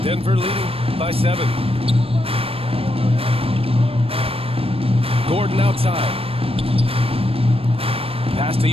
Denver leading by 7. Gordon outside. Pass to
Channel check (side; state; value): left; late; 0.28 ms